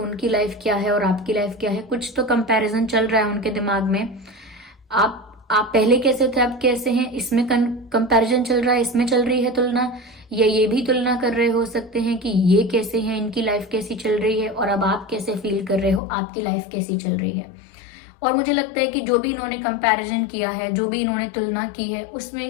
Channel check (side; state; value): right; drops out; at 16.0 s